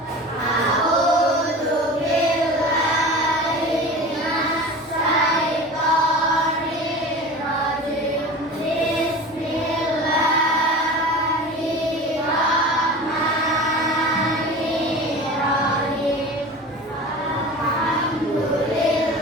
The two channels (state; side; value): normal; both; correlation 0.35